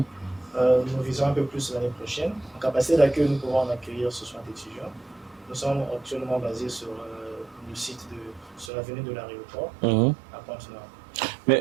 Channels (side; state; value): left; drops out; at 8.7 s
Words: visons un peu plus l'année prochaine. En capacité d'accueil, nous pourrons en accueillir 60 étudiants. Nous sommes actuellement basés sur le site sur l'avenue de l'aéroport à Pointe-Noire.